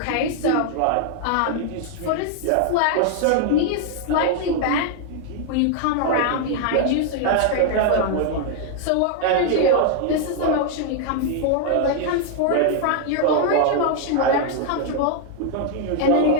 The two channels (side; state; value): both; different; correlation 0.00